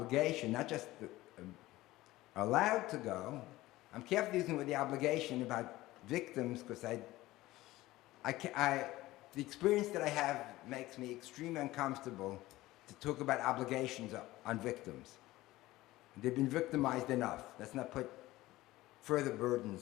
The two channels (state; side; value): quieter; right; 17.5 dB